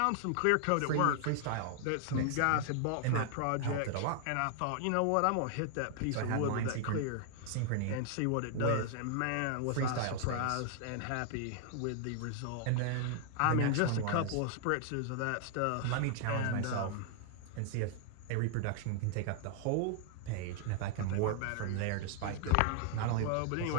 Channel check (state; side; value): different; both; correlation 0.00